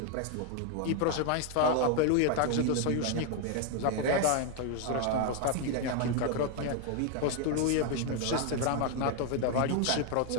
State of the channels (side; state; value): both; different; correlation 0.01